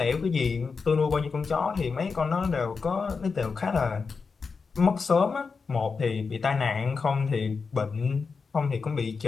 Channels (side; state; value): right; quieter; 5.0 dB